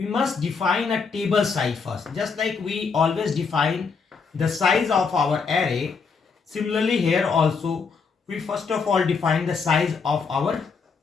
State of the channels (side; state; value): right; quieter; 5.2 dB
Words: must define a table size first. Just like we always define the size of our array, similarly here also we first of all define the size of our